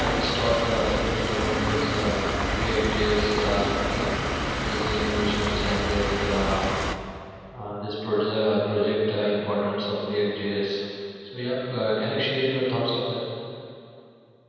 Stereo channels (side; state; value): both; identical; correlation 1.00